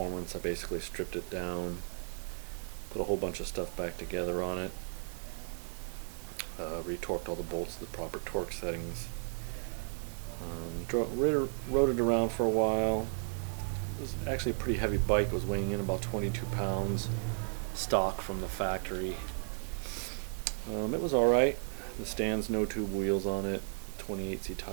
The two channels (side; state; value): left; silent; 55 dB below the other